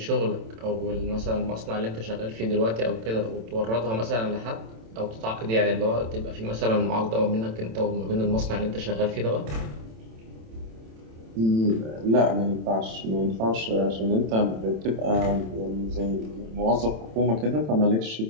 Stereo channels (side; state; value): left; late; 27 ms